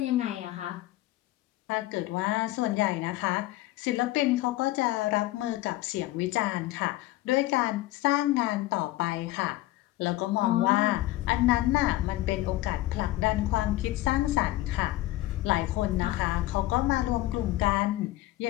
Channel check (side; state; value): right; quieter; 16.7 dB